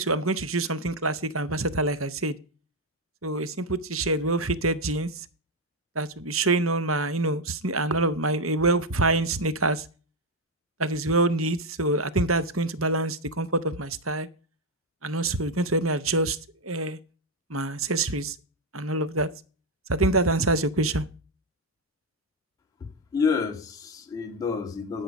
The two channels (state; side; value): normal; both; correlation 0.04